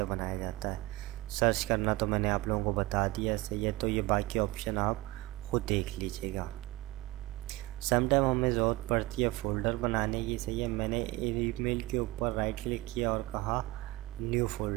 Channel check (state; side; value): quieter; left; 19.8 dB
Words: बनाया जाता है। सर्च करना तो मैंने आप लोगों को बता दिया, सही है। तो ये बाकी ऑप्शन आप ख़ुद देख लीजिएगा। समटाइम हमें ज़रूरत पड़ती है फ़ोल्डर बनाने की, सही है। मैंने ईमेल के ऊपर राइट क्लिक किया और कहा न्यू